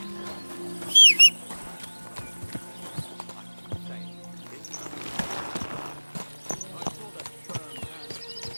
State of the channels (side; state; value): both; inverted; correlation -1.00